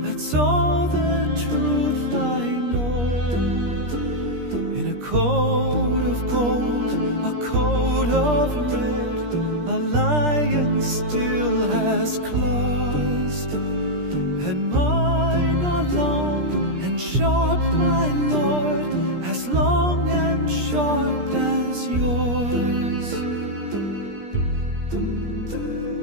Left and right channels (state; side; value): late; left; 17 ms